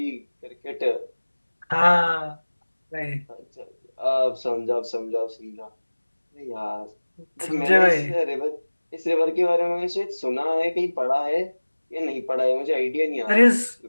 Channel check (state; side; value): inverted; both; correlation -1.00